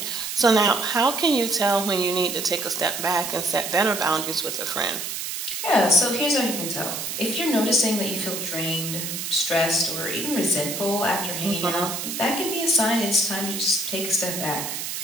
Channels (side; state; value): right; noise; hiss, 5 dB below the sound